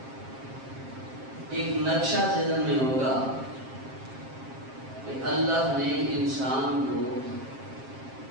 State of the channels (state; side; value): late; left; 7.5 ms